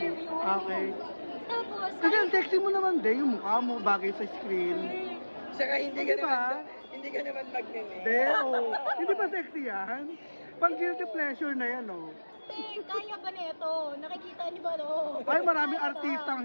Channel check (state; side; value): inverted; both; correlation -1.00